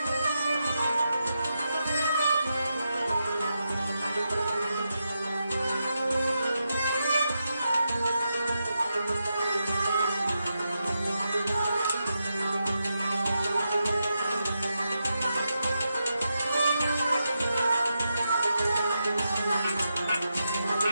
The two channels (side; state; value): both; inverted; correlation -0.87